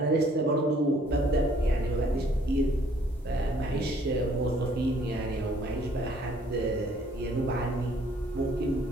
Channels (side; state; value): both; normal; correlation 0.61